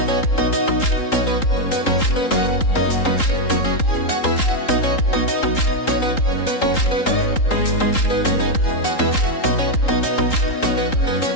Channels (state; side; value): late; right; 3.8 ms